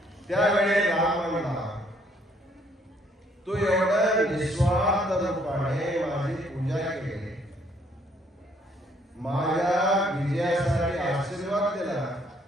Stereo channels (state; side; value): normal; both; correlation 0.66